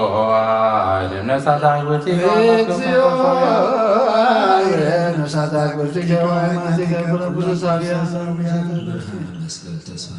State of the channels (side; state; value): both; identical; correlation 1.00